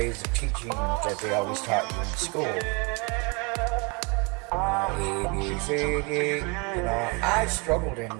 of teaching that they always taught you in school. A, B, C, D, I struggled in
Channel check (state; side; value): quieter; left; 31.1 dB